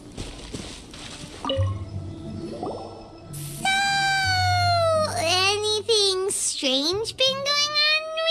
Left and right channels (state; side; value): identical; both; correlation 1.00